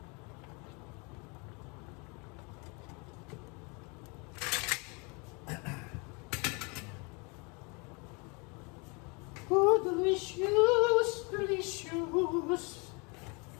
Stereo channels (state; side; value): quieter; right; 30.7 dB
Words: Oh, delicious! Delicious!